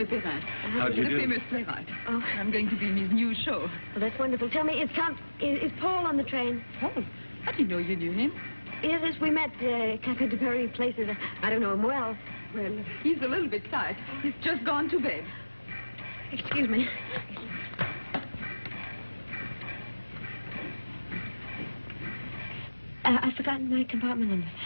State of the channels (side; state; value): both; inverted; correlation -1.00